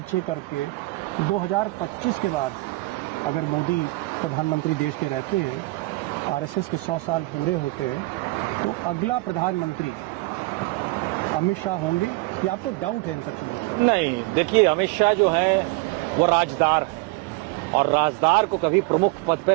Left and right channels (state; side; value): quieter; left; 22.2 dB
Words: करके 2025 के बाद अगर मोदी प्रधानमंत्री देश के रहते हैं, आरएसएस के 100 साल पूरे होते हैं, तो अगला प्रधानमंत्री अमित शाह होंगे या आपको डाउट है इन सब चीजों पर? नहीं, देखिए अमित शाह जो है वो राजदार है और राजदार को कभी प्रमुख पद